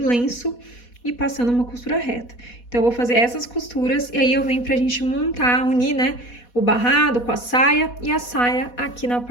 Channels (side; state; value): right; late; 4.1 ms